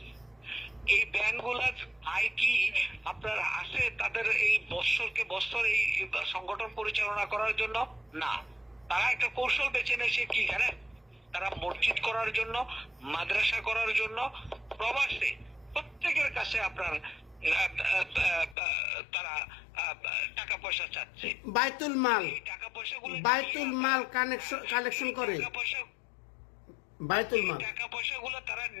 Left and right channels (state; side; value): drops out; right; at 18.6 s